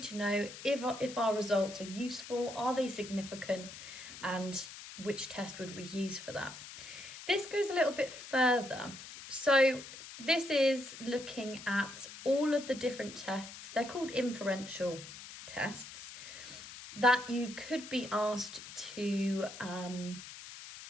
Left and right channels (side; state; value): left; noise; hiss, 13 dB below the sound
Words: to know if our results are useful, are they significant, and which test would we use for that. This goes a little bit further. So this is looking at all of the different tests. They're called inferential tests that you could be asked to